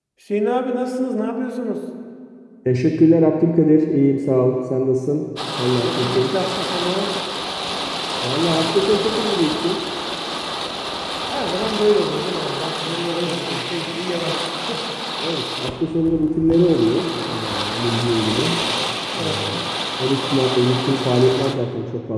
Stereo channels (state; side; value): identical; both; correlation 1.00